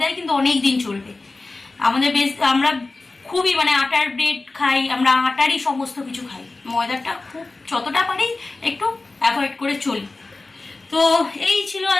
কিন্তু অনেক দিন চলবে। আমরা খুবই মানে আটার ব্রেড খাই, আমরা আটারই সমস্ত কিছু খাই। ময়দাটা খুব যতটা পারি একটু অ্যাভয়েড করে চলি। তো এই ছিল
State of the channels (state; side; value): quieter; right; 3.4 dB